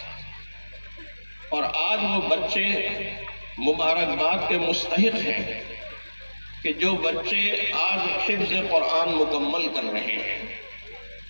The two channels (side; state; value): both; inverted; correlation -1.00